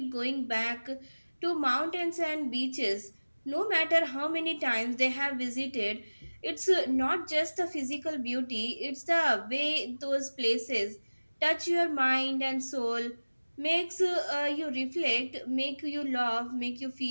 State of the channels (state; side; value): inverted; both; correlation -1.00